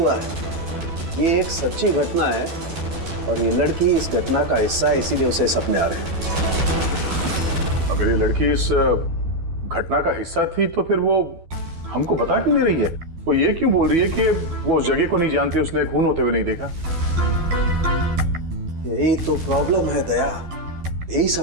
है। ये एक सच्ची घटना है और ये लड़की इस घटना का हिस्सा है, इसीलिए उसे सपने आ रहे हैं। अगर ये लड़की इस घटना का हिस्सा थी तो फिर वो हमको बता क्यों नहीं रही है? वो ये क्यों बोल रही है कि वो उस जगह को नहीं जानती, उसने खून होते हुए नहीं देखा? यही तो प्रॉब्लम है दया। यही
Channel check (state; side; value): late; left; 12 ms